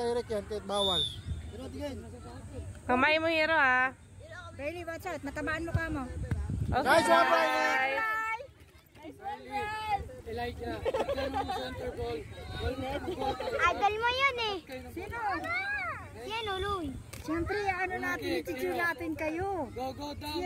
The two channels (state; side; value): identical; both; correlation 1.00